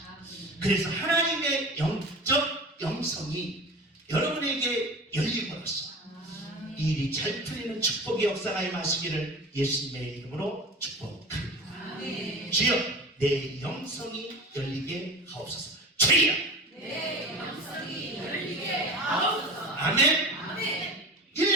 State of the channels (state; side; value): normal; both; correlation 0.34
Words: 그래서 하나님의 영적 영성이 여러분에게 열림으로써 일이 잘 풀리는 축복의 역사가 임하시기를 예수님의 이름으로 축복합니다. 주여 내 영성이 열리게 하옵소서. 주여 내 영성이 열리게 하옵소서. 아멘.